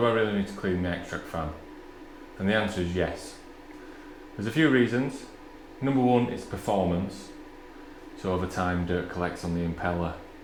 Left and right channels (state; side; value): identical; both; correlation 1.00